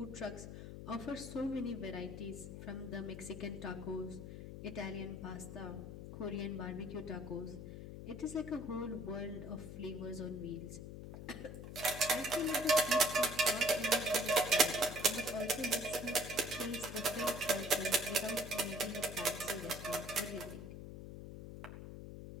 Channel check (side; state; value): left; noise; hum, 10 dB below the sound